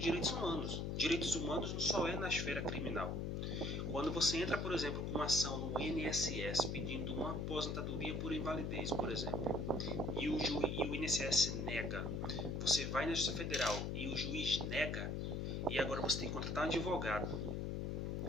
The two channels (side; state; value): left; noise; hum, 1 dB below the sound